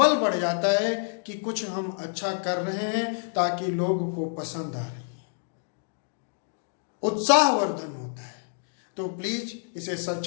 बढ़ जाता है कि कुछ हम अच्छा कर रहे हैं ताकि लोगों को पसंद आ रही है, उत्साहवर्धन होता है। तो प्लीज इसे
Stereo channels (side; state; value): right; silent; digital silence